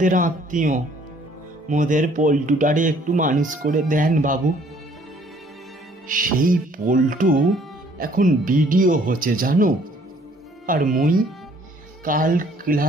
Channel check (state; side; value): normal; both; correlation 0.60